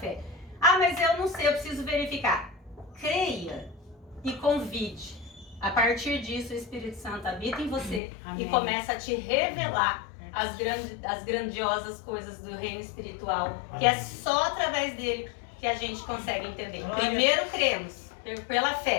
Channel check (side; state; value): right; drops out; at 8.0 s